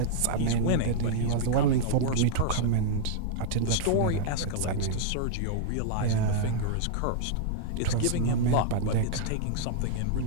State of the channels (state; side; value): different; both; correlation -0.01